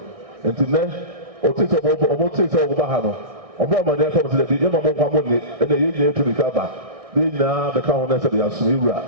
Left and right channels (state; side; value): late; left; 1.6 ms